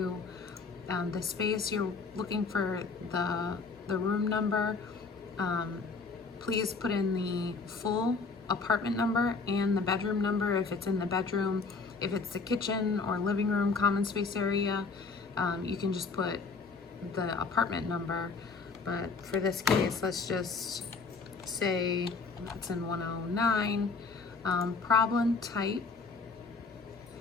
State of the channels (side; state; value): right; quieter; 4.4 dB